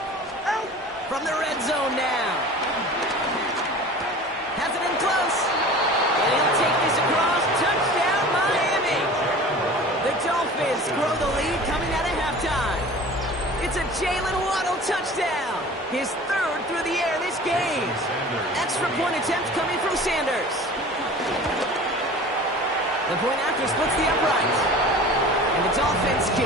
From the red zone now. Has it in close. And he'll take this across. Touchdown, Miami. The Dolphins grow the lead coming out of halftime. It's a Jalen Waddle touchdown. His 3rd through the air this game. Extra point attempt coming from Sanders. The point after splits the uprights. And the Dolphins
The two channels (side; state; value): both; normal; correlation 0.40